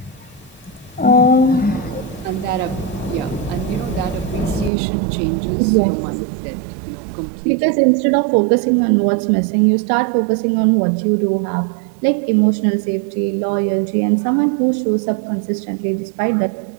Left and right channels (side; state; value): left; drops out; at 4.7 s